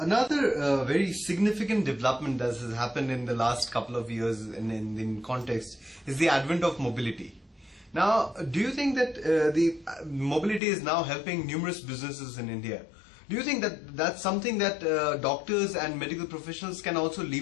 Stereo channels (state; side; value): drops out; right; at 10.6 s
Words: very significant development that has happened in the last couple of years in context is the advent of mobility. Now, do you think that the mobility is now helping numerous businesses in India? Do you think that that's something that doctors and medical professionals can also